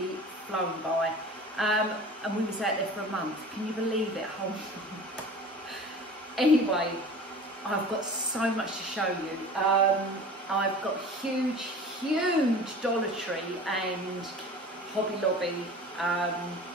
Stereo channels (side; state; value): both; normal; correlation 0.40